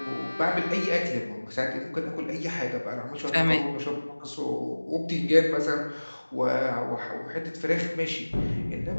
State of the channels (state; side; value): inverted; both; correlation -1.00